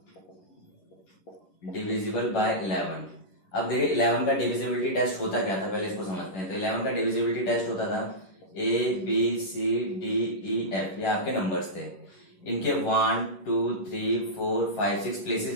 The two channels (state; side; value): late; right; 11 ms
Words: Divisible by 11। अब देखिए 11 का डिविजिबिलिटी टेस्ट होता क्या था, पहले इसको समझते हैं। तो 11 का डिविजिबिलिटी टेस्ट होता था ABCDEF, ये आपके नंबर्स थे। इनके 1, 2, 3, 4, 5, 6 प्लेसेस